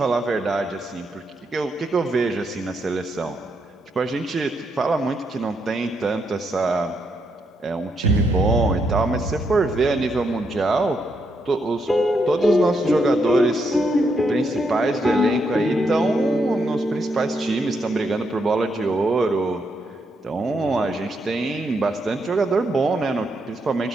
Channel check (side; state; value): both; normal; correlation 0.79